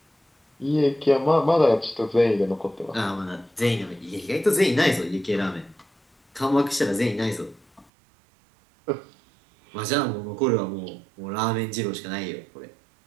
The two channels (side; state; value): left; drops out; at 7.9 s